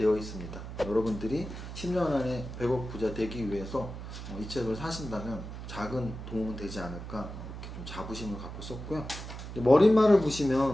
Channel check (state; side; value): noise; right; hum, 9 dB below the sound